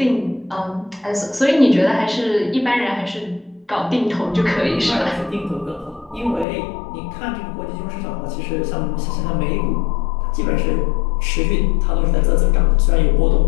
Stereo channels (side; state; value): right; drops out; at 6.5 s